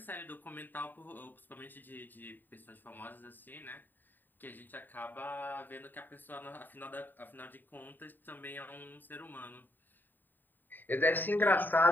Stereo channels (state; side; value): late; right; 0.091 ms